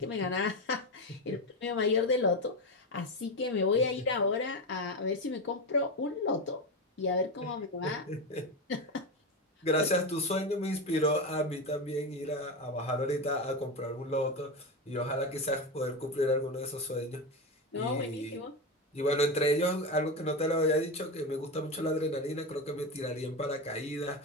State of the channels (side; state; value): both; normal; correlation 0.16